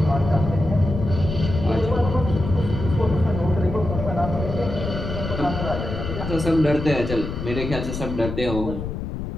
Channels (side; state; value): left; noise; rumble, 5 dB below the sound